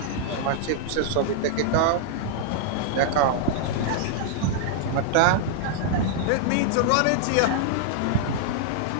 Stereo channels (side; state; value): both; different; correlation -0.01